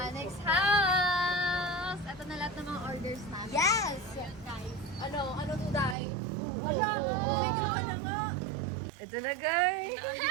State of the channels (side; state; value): left; drops out; at 6.0 s